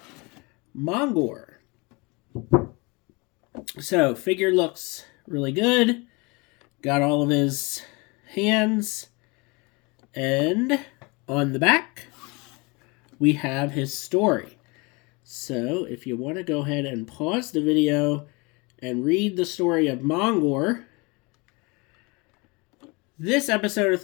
Mongor. So figure looks really good. Got all of his hands. And on the back, we have his story. So if you want to go ahead and pause the video and read the story of Mongor, this episode of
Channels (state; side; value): quieter; right; 27.7 dB